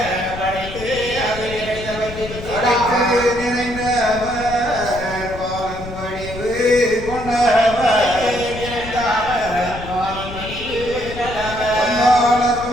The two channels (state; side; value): noise; left; rumble, 11 dB below the sound